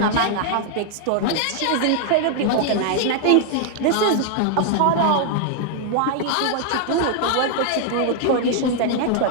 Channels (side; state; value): both; different; correlation 0.00